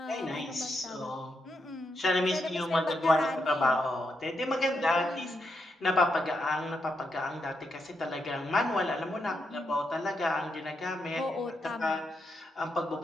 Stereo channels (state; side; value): normal; both; correlation 0.82